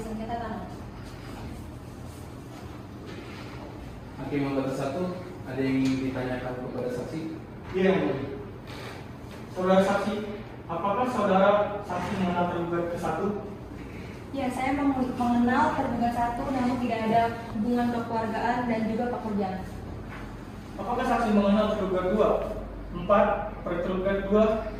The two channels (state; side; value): identical; both; correlation 1.00